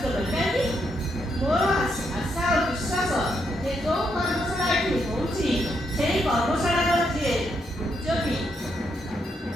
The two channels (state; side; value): normal; both; correlation 0.78